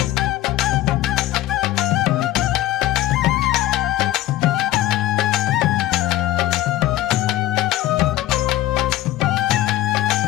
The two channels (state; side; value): quieter; right; 14.9 dB